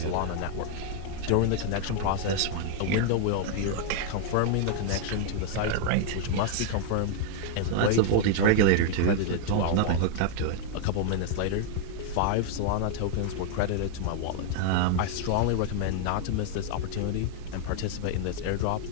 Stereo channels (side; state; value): both; different; correlation 0.00